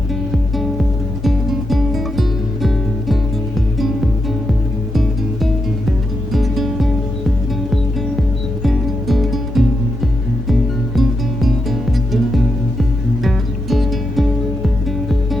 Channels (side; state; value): both; normal; correlation 0.85